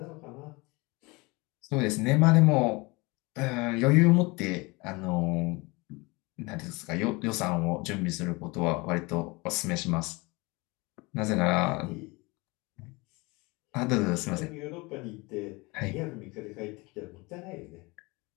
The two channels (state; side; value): quieter; right; 25.2 dB